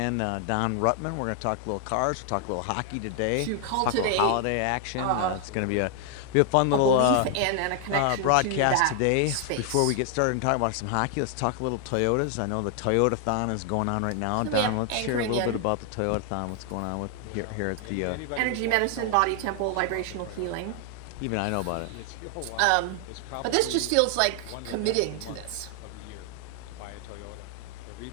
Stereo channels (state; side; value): different; both; correlation 0.00